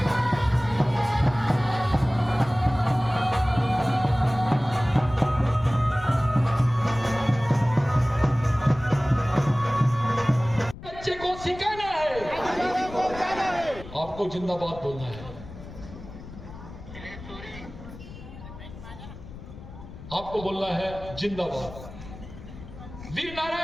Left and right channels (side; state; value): left; noise; rumble, 15 dB below the sound